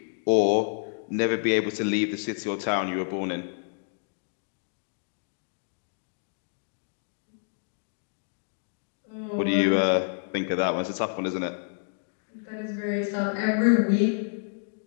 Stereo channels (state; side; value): silent; right; digital silence